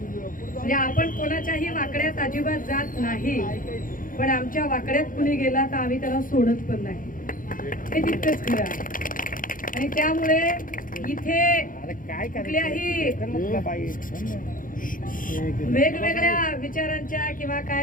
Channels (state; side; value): late; right; 0.40 ms